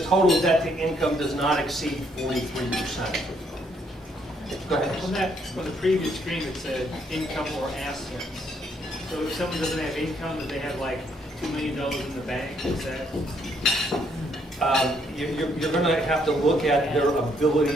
total debt to income does not exceed 43%. Go ahead. On the previous screen, it said income or assets. So if someone doesn't have income, do they have like $2 million in the bank? Is that? You're going to have to look at their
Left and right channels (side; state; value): both; normal; correlation 0.70